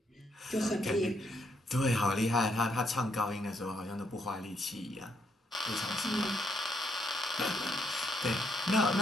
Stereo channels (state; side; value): normal; both; correlation 0.75